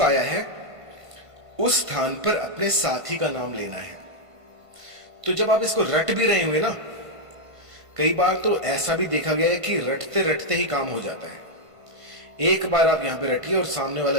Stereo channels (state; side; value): late; left; 1.5 ms